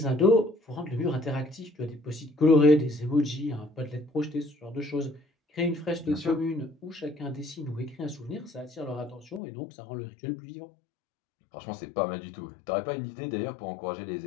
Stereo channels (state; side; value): drops out; right; at 9.4 s